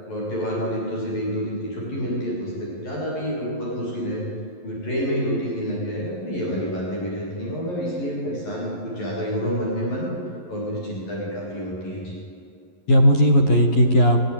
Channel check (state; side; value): late; right; 11 ms